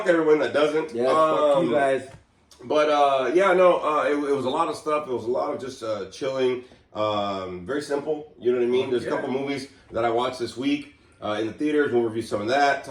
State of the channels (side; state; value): both; identical; correlation 1.00